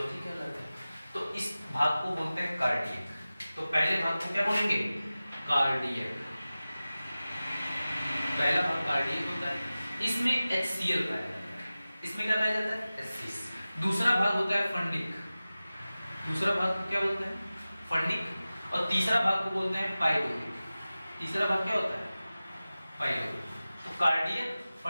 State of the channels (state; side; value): inverted; both; correlation -0.96